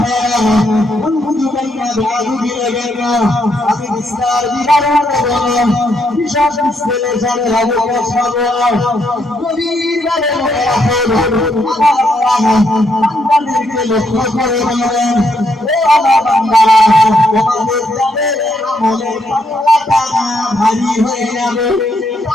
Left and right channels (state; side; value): normal; both; correlation 0.76